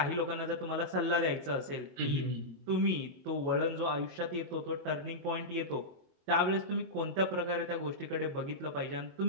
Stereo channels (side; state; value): left; late; 21 ms